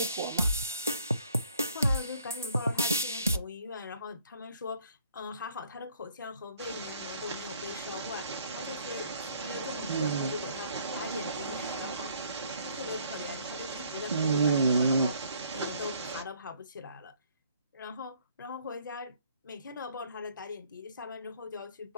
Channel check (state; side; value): inverted; both; correlation -0.61